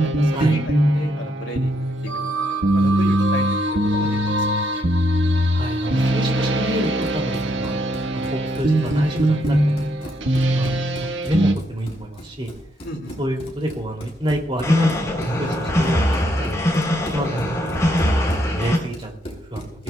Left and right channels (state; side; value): normal; both; correlation 0.75